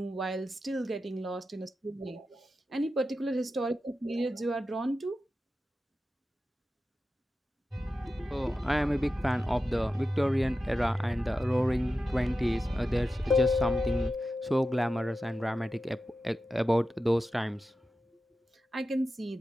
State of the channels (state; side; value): normal; both; correlation 0.92